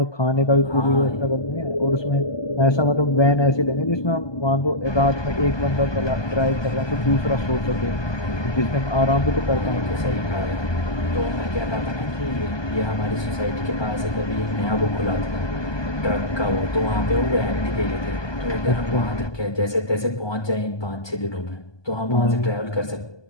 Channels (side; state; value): right; late; 1.2 ms